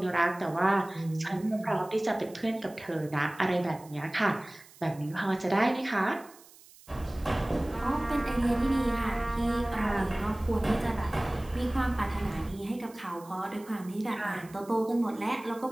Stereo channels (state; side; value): noise; right; hiss, 23 dB below the sound